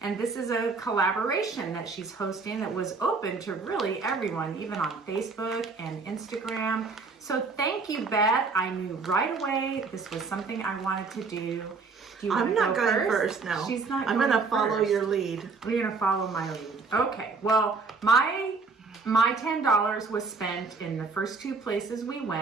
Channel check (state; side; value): quieter; left; 4.4 dB